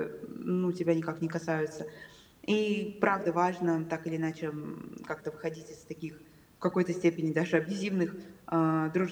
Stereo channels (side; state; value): both; identical; correlation 1.00